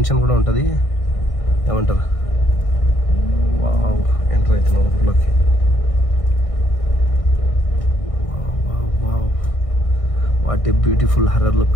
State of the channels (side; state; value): right; late; 1.6 ms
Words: కూడా ఉంటుంది. ఏమంటారు? వావ్, ఎంటర్ అవుతున్నాం ఊర్లోకి. What a beautiful horror